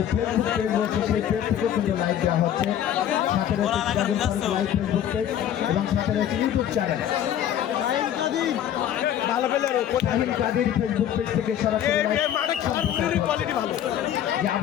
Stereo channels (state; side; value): quieter; right; 10.4 dB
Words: ফেসবুক পেজ রয়েছে সেই পেজ থেকেও কিন্তু লাইভ দেওয়া হচ্ছে। সাথে রয়েছে Sirajul Faruk live Facebook page এবং সাথে রয়েছে YouTube channel Shahin Kader Facebook page থেকে সরাসরি যে